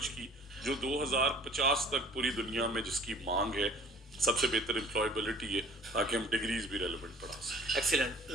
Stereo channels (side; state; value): both; normal; correlation 0.50